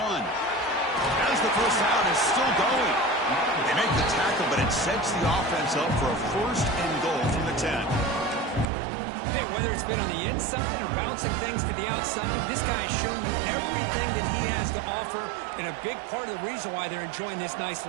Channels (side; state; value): left; drops out; at 8.7 s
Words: As the 1st down is still going. They make the tackle, but it sets the offense up for a 1st and goal from the 10. Hey, whether it's been on the inside or bouncing things to the outside, this guy has shown you everything that he has to offer, and a big part of the reason why they're enjoying this nice